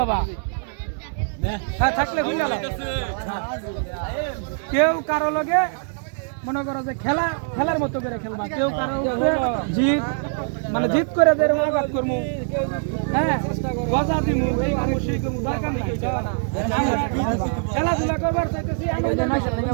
বাবা হ্যাঁ থাকলে খুলে লাও কেউ কারো লগে মনে করো যে খেলার মতো করে খেলবা কেউ কারো জিত মানে জিত করে দের আঘাত করমু হ্যাঁ গজা দিমু এই করমু সেই করমু দরকার নাই খেলাধুলা করবার চাইতেছি আনন্দ নাই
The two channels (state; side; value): silent; left; digital silence